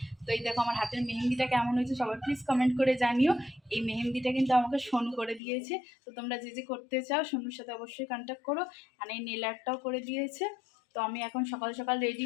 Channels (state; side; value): drops out; right; at 5.4 s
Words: তো এই দেখো আমার হাতের মেহেন্দিটা কেমন হয়েছে সবাই প্লিজ কমেন্ট করে জানিও। এই মেহেন্দিটা কিন্তু আমাকে সোনু করে দিয়েছে। তো তোমরা যে যে করতে চাও সোনুর সাথে অবশ্যই কন্ট্যাক্ট করো। আর এই নেল আর্টটাও করে দিয়েছে। তো আমি এখন সকাল সকাল রেডি